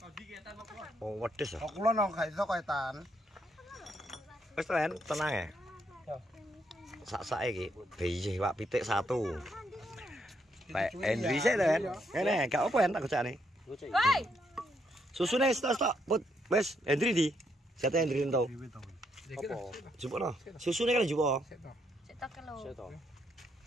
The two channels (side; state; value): both; normal; correlation 0.75